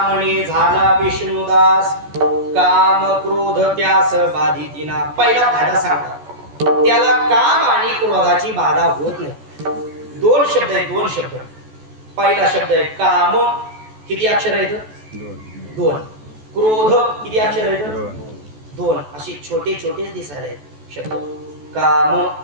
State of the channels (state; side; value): late; left; 14 ms